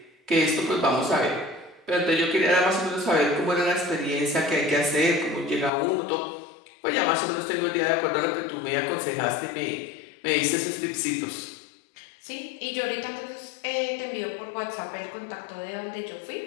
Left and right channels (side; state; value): right; drops out; at 5.7 s